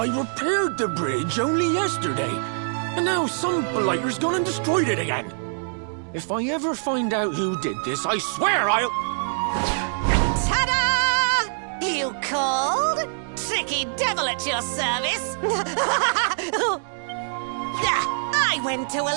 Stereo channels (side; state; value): left; silent; digital silence